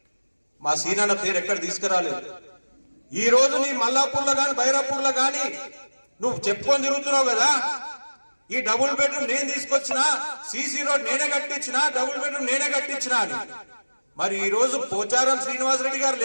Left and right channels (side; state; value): both; inverted; correlation -1.00